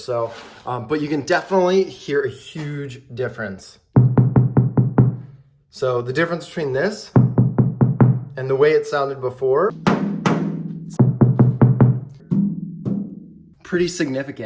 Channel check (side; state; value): both; identical; correlation 1.00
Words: So, but you can definitely hear a huge difference. So the difference between this and the way it sounded before, pretty